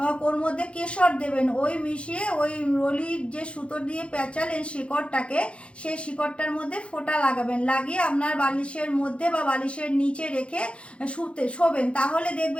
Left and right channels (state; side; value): late; right; 0.060 ms